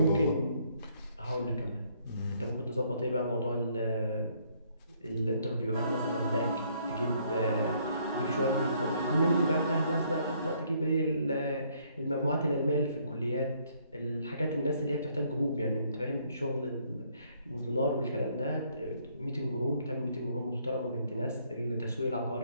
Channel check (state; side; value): inverted; both; correlation -0.67